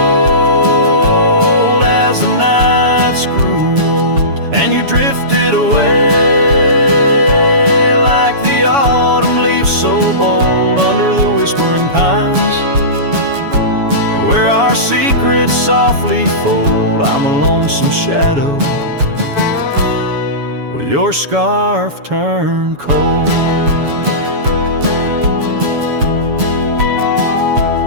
as the nights grew old, and you drifted away like the autumn leaves so bold under the whispering pines, where our secrets softly fold. I'm a lonesome shadow with your scarf turned cold.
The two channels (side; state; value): left; late; 7.1 ms